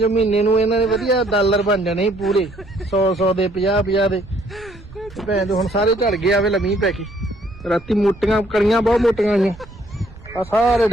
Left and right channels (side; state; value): right; noise; rumble, 19 dB below the sound